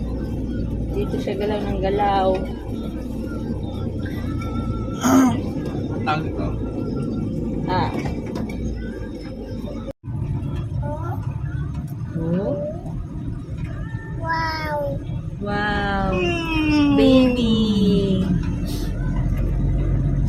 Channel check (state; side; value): identical; both; correlation 1.00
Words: Dito siya galaw ng galaw. Tawag ito. Ah. Oh? Wow. Wow. Baby.